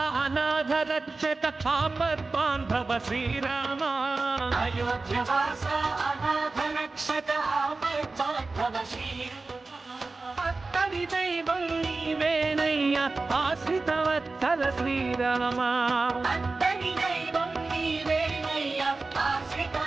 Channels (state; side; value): quieter; left; 3.6 dB